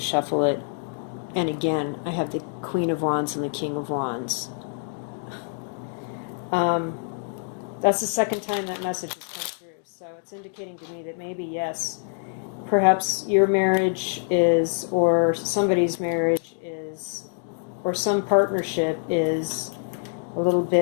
it. And again, I have the Queen of Wands and the King of Wands. That's the second time that message has come through. So it's indicating to me that maybe, yes, perhaps your marriage is, or somebody's marriage is, or some partnership is a little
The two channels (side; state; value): right; silent; digital silence